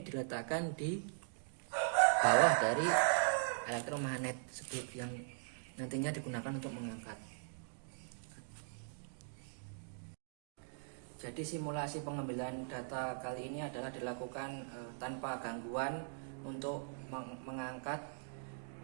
diletakkan di bawah dari elektromagnet yang nantinya digunakan untuk mengangkat. Jadi simulasi pengambilan data kali ini adalah dilakukan tanpa gangguan untuk mengangkat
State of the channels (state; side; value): silent; left; digital silence